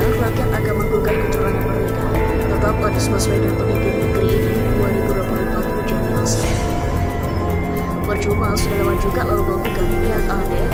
akan menggugat kecurangan mereka. Tetap Anies Baswedan pemimpin negeri ini 2024 menjadi masa. Percuma sudah lewat juga lalu menggugat. Yang aneh,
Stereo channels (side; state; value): both; identical; correlation 1.00